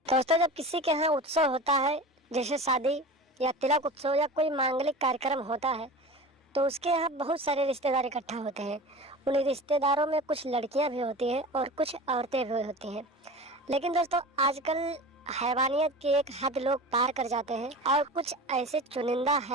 दोस्तों, जब किसी के यहाँ उत्सव होता है, जैसे शादी या तिलक उत्सव या कोई मांगलिक कार्यक्रम होता है, तो उसके यहाँ बहुत सारे रिश्तेदार इकट्ठा होते हैं। उन रिश्तेदारों में कुछ लड़कियां भी होती हैं और कुछ औरतें भी होती हैं। लेकिन दोस्तों, आजकल हैवानियत की एक हद लोग पार कर जाते हैं और कुछ ऐसे चुनिंदा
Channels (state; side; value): normal; both; correlation 0.33